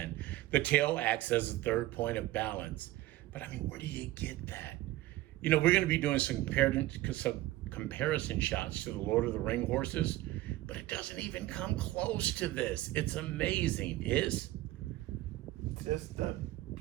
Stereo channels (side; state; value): left; quieter; 16.6 dB